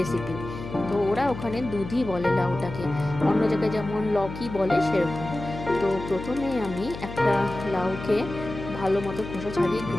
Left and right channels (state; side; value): noise; left; hum, 10 dB below the sound